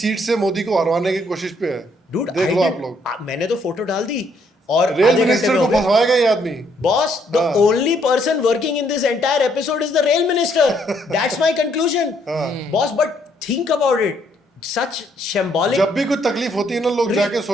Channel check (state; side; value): normal; both; correlation 0.70